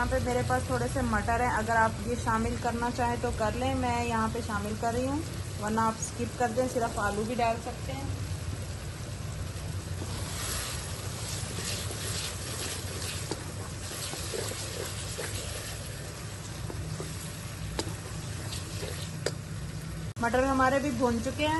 पे मेरे पास थोड़े से मटर हैं, अगर आप ये शामिल करना चाहें तो कर लें, मैं यहाँ पे शामिल कर रही हूँ, वरना आप स्किप कर दें, सिर्फ आलू भी डाल सकते हैं। मटर हमारे भी भून चुके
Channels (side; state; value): both; identical; correlation 1.00